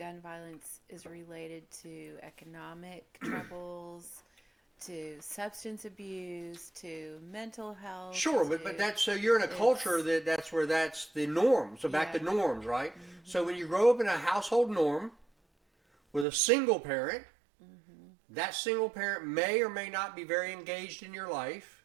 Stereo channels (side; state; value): left; drops out; at 16.2 s